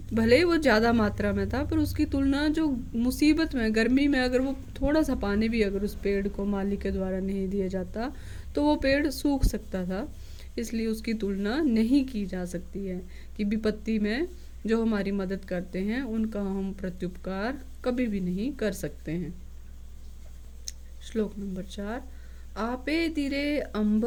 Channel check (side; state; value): both; identical; correlation 1.00